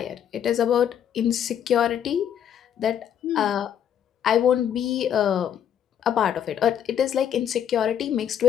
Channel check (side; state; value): right; quieter; 9.4 dB